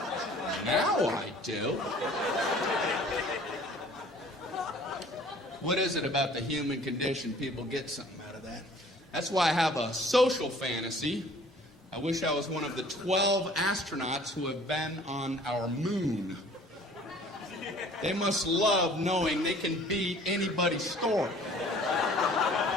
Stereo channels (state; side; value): normal; both; correlation 0.52